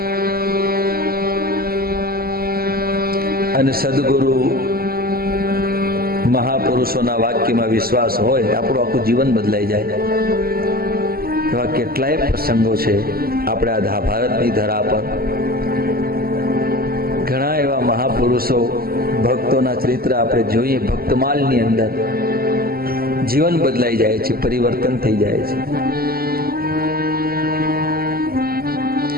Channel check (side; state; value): left; late; 0.44 ms